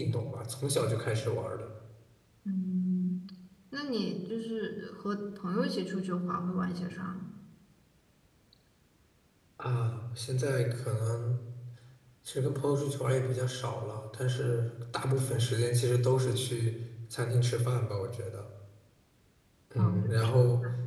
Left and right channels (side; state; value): both; identical; correlation 1.00